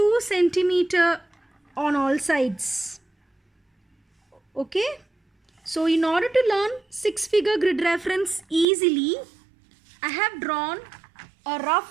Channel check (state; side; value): drops out; left; at 8.7 s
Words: centimeter on all sides. Okay, so in order to learn 6-figure grid reference easily, I have drawn a